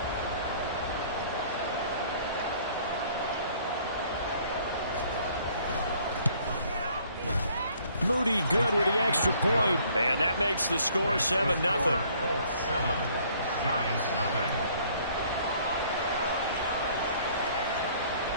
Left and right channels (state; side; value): inverted; both; correlation -0.60